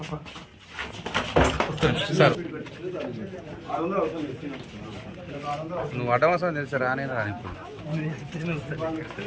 సార్ నువ్వు అడ్డమవసరం తెలుసా? రానే రాని ఇప్పుడు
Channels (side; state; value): both; identical; correlation 1.00